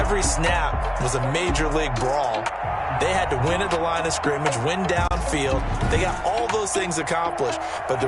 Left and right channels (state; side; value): identical; both; correlation 1.00